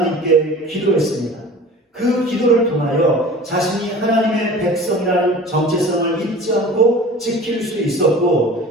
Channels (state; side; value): normal; both; correlation 0.40